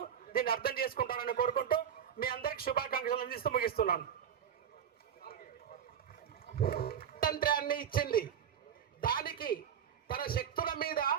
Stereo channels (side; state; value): left; quieter; 8.5 dB